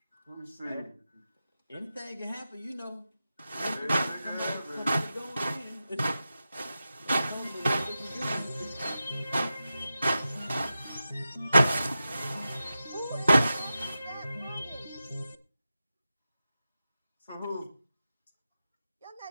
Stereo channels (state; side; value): inverted; both; correlation -0.92